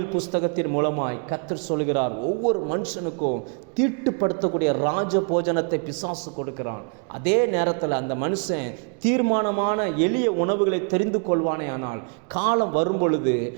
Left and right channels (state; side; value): quieter; left; 38.8 dB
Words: புஸ்தகத்தின் மூலமாய் கர்த்தர் சொல்கிறார், ஒவ்வொரு மனுஷனுக்கும் தீட்டுப்படுத்தக்கூடிய ராஜ போஜனத்தை பிசாசு கொடுக்கிறான். அதே நேரத்தில் அந்த மனுஷன் தீர்மானமான எளிய உணவுகளை தெரிந்து கொள்வானே. ஆனால் காலம் வரும் பொழுது